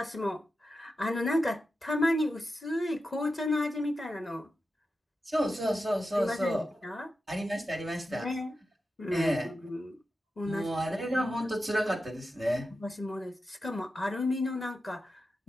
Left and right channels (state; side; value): normal; both; correlation 0.91